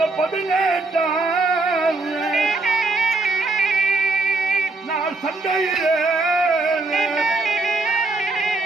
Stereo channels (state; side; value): quieter; left; 3.4 dB